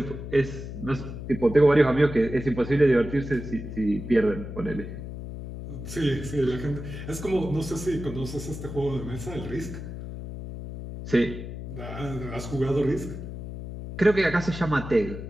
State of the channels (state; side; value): noise; left; hum, 9 dB below the sound